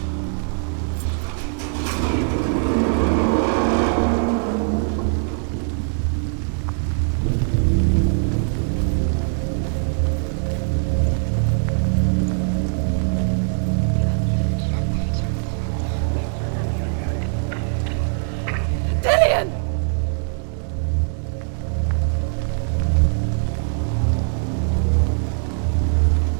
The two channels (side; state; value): left; silent; 58 dB below the other